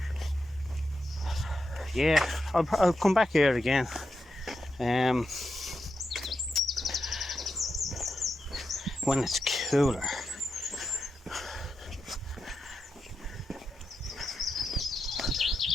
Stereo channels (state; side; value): normal; both; correlation 0.87